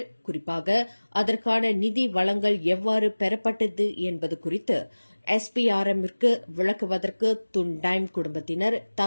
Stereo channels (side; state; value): both; inverted; correlation -1.00